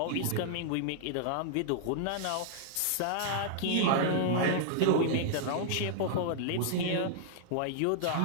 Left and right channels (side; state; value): both; different; correlation -0.01